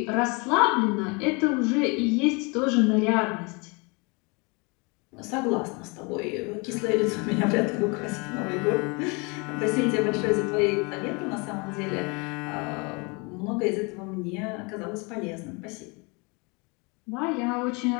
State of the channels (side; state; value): right; quieter; 29.9 dB